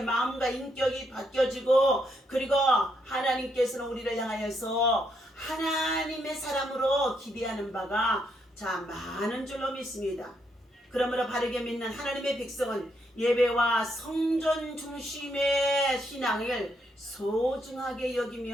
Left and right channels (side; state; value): both; normal; correlation 0.76